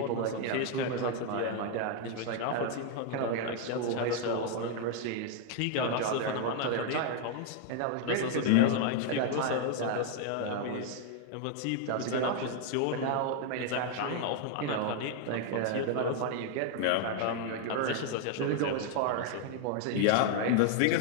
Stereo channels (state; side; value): different; both; correlation 0.00